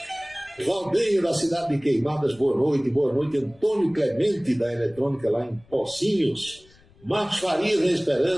Valdinho, da cidade de Queimadas, boa noite. Boa noite, Antônio Clemente, da Eletrônica, lá em Pocinhos. Marcos Farias, da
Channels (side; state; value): left; noise; rumble, 28 dB below the sound